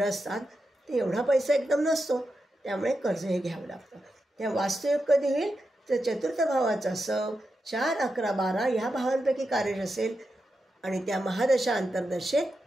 असतात, ते एवढा पैसा एकदम नसतो, त्यामुळे कर्ज हे घ्यावं लागतं. त्या वास्तुयोग कधी होईल? तर चतुर्थ भावाचा सब 4, 11, 12 ह्या भावांपैकी कार्य असेल आणि त्या महादशा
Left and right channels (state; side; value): normal; both; correlation 0.88